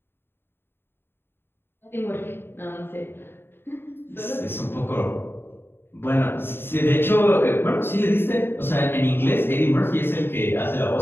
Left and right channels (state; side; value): late; right; 0.11 ms